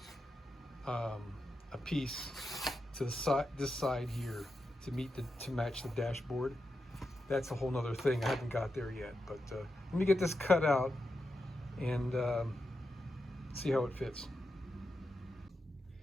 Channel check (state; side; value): normal; both; correlation 0.88